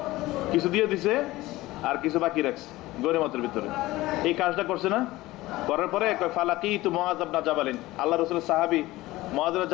কিছু দিয়ে দিছে আর কিছু বাকি রাখছে গনিমতের ভিতরে। এই কাজটা করছে না, করার পরে ফালাকি তু মুআয ইবনে জাবালিন, আল্লাহ রাসূলের সাহাবী মুআয ইবনে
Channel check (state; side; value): quieter; right; 18.3 dB